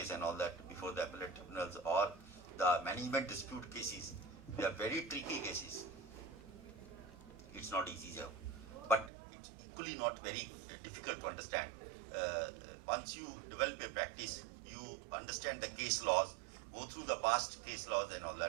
and all that before the appellate tribunals or the management dispute cases. They are very tricky cases. It's not easy, sir. But it's equally not very difficult to understand. Once you develop a practice, you understand the case laws, go through the past case laws and all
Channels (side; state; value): left; drops out; at 9.1 s